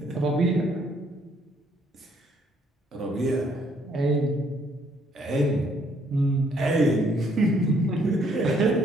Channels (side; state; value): both; normal; correlation 0.67